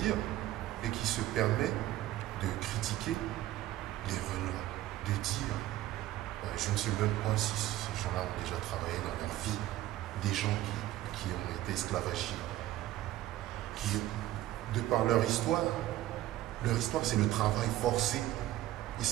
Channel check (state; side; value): quieter; left; 14.8 dB